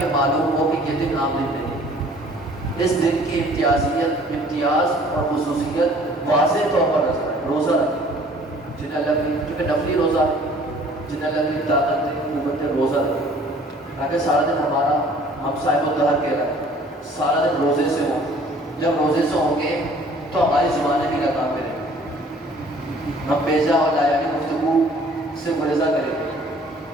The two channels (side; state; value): both; normal; correlation 0.53